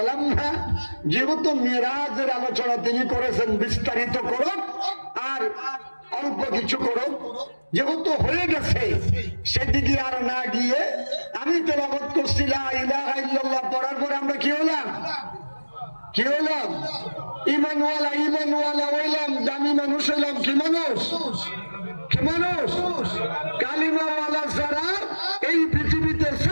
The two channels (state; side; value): inverted; both; correlation -1.00